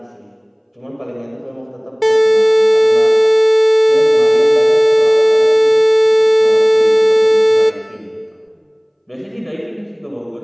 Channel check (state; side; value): identical; both; correlation 1.00